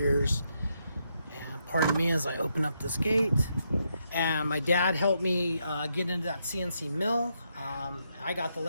And pardon me as I open up this gate. And my dad helped me get into that CNC mill. I got the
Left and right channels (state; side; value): inverted; both; correlation -0.79